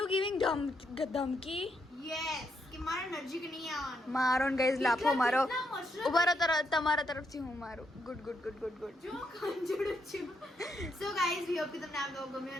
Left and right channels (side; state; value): both; normal; correlation 0.78